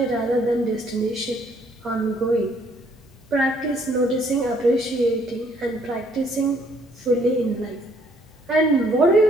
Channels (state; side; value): normal; both; correlation 0.65